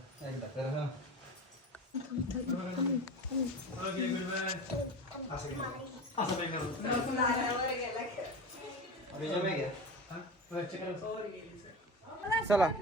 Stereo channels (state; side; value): normal; both; correlation 0.28